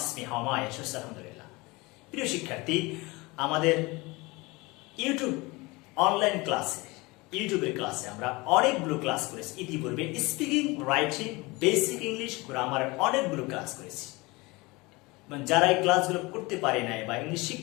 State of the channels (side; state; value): right; quieter; 23.8 dB